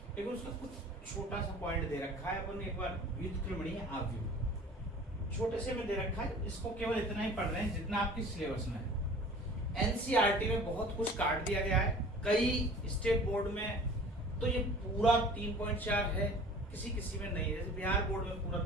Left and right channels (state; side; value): normal; both; correlation 0.45